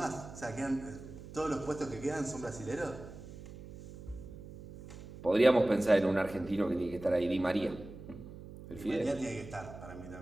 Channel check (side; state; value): right; noise; hum, 14 dB below the sound